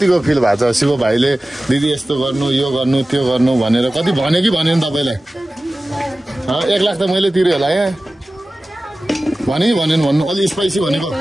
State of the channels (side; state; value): both; normal; correlation 0.96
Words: फिल भएको छ शिव भाइले दिदी यस्तो गर्नु यो गर्नु त्यो गर्नु भनेर कति भन्यो कि भनेन तपाईँलाई 1 लाख त मैले तिर्यो होला यहाँ भने कि भनेन भन्नु अलि स्पाइसी भनेको